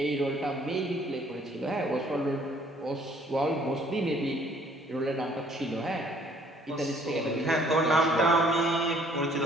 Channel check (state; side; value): normal; both; correlation 0.60